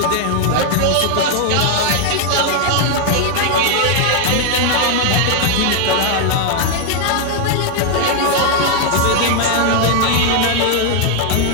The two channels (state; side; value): different; both; correlation 0.00